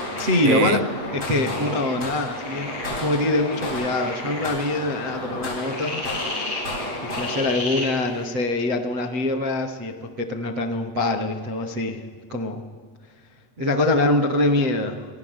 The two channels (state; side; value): late; left; 8.3 ms